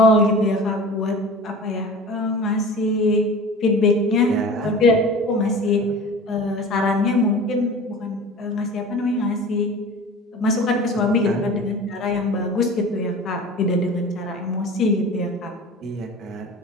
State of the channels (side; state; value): both; normal; correlation 0.37